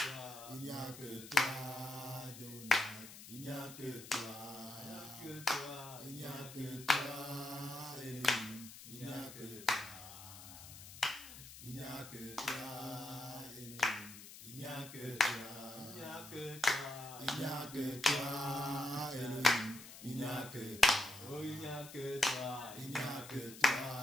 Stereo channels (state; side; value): noise; left; hiss, 14 dB below the sound